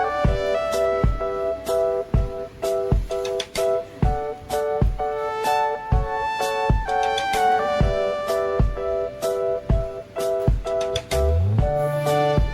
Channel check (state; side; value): identical; both; correlation 1.00